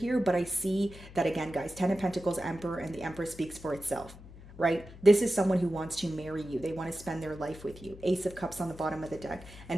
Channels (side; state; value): left; noise; hum, 17 dB below the sound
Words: But I see that, again, guys, 10 of Pentacles, Emperor, and the Empress speaks for itself, right? This is someone who wants to marry you. They want to spend their life with you. Ace of Cups on the bottom of the deck. And